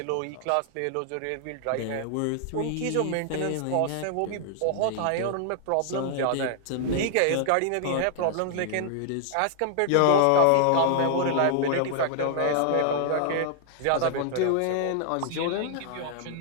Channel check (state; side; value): different; both; correlation -0.01